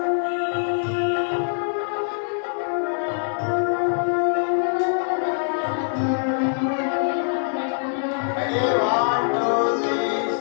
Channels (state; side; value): silent; right; 60 dB below the other